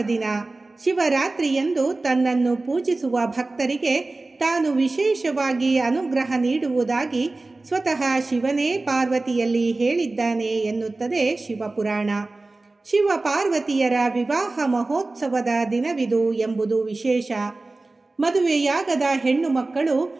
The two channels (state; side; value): quieter; left; 3.2 dB